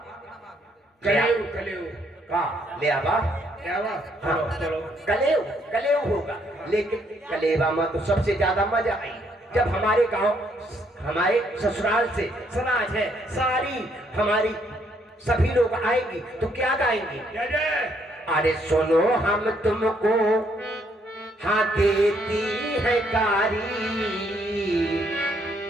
कलेव, कलेव का लेवा, लेवा। हाँ। चलो कलेव, कलेव होगा। लेकिन कलेवा में तो सबसे ज्यादा मजा आई जब हमारे गांव, हमारे ससुराल से समाज है सारी, हमारी सभी लोग आएंगी तो क्या गाएंगी? अरे सुनो हम तुमको हाँ देती है गारी,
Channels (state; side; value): normal; both; correlation 0.70